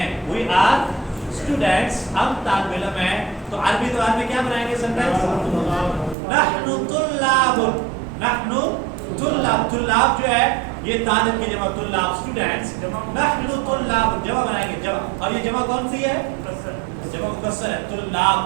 we are students، ہم طالب علم ہیں. تو عربی زبان میں کیا بنائیں گے سینٹینس؟ نحن طلاب، نحن طلاب. طلاب جو ہے یہ طالب کی جمع، طلاب اسٹوڈنٹس. نحن طلاب جمع بنائیں گے، جمع. اور یہ جمع کون سی ہے؟ جمع مکسر ہے.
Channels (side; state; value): left; drops out; at 6.2 s